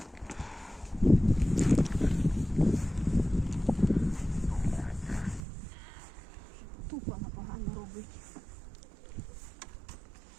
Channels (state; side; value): drops out; left; at 5.4 s